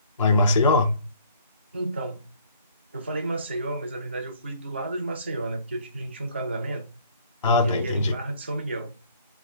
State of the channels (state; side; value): inverted; both; correlation -0.58